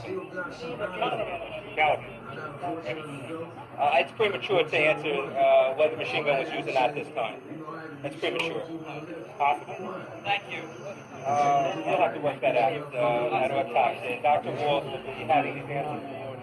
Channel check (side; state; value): both; identical; correlation 1.00